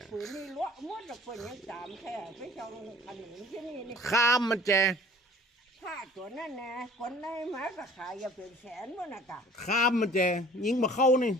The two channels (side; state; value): both; normal; correlation 0.49